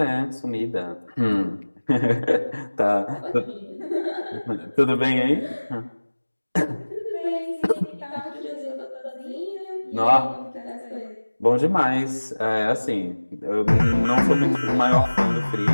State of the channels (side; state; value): both; inverted; correlation -1.00